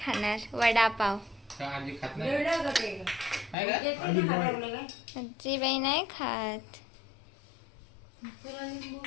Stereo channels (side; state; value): right; drops out; at 3.6 s